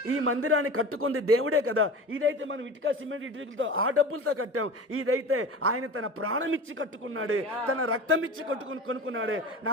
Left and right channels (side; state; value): both; normal; correlation 0.33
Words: ఈ మందిరాన్ని కట్టుకుంది దేవుడే కదా. ఇదైతే మనం ఇటుక సిమెంట్ ఇటుకలతో ఆ డబ్బులతో కట్టాం. ఇదైతే ఆయన తన ప్రాణం ఇచ్చి కట్టుకున్నాడే, తన రక్తం ఇచ్చి కొనుక్కున్నాడే,